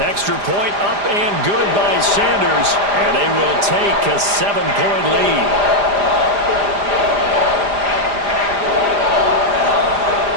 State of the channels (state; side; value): late; left; 4.9 ms